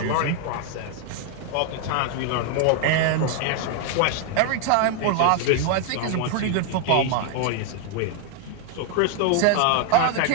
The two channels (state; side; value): different; both; correlation 0.01